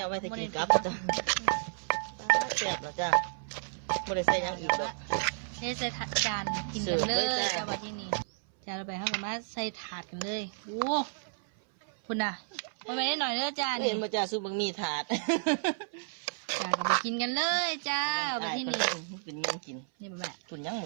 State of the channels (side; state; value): left; silent; 57 dB below the other